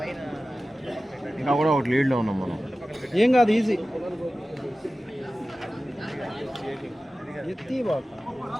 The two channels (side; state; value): both; normal; correlation 0.96